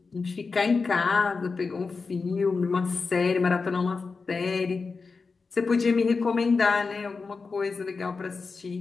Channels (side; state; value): right; quieter; 4.5 dB